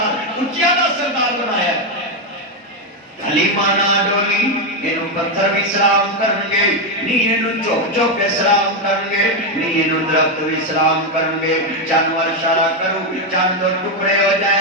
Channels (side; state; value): both; normal; correlation 0.06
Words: اچیا کا سردار بنایا ہے حلیمہ نہ ڈولی انہوں پتھر بھی سلام کرنگے نہیں انہوں چوک چوک کے سلام کرنگے نہیں انہوں درخت بھی سلام کرنگے جانور اشارہ کرو چاند دو ٹکڑے ہو